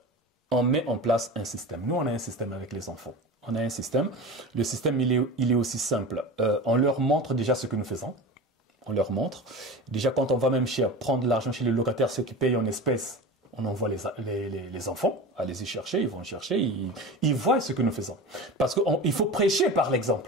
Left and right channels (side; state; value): both; normal; correlation 0.31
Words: on met en place un système. Nous, on a un système avec les enfants. On a un système. Le système, il est aussi simple. On leur montre déjà ce que nous faisons. On leur montre. Déjà, quand on va même prendre l'argent chez les locataires, ceux qui payent en espèces, on envoie les enfants à les y chercher, ils vont chercher, ils voient ce que nous faisons. Parce qu'il faut prêcher par